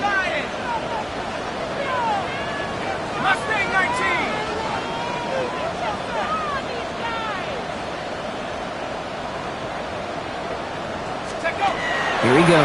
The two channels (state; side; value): identical; both; correlation 1.00